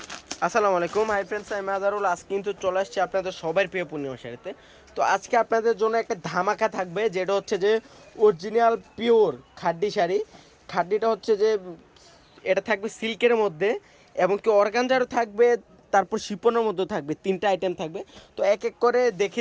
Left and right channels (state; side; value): identical; both; correlation 1.00